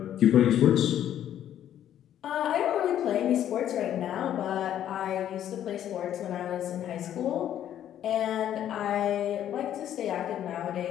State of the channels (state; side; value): quieter; right; 10.9 dB